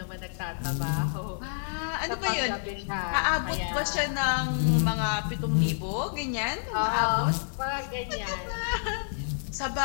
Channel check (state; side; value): silent; right; digital silence